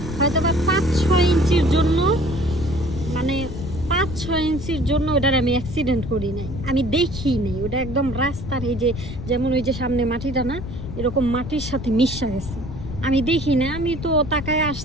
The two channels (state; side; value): noise; left; rumble, 8 dB below the sound